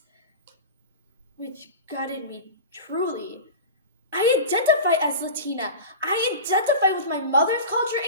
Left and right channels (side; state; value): both; inverted; correlation -0.30